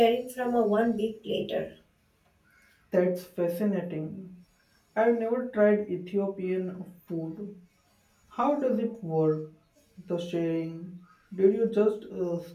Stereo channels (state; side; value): identical; both; correlation 1.00